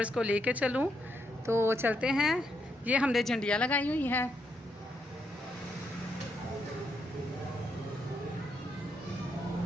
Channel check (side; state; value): both; normal; correlation 0.79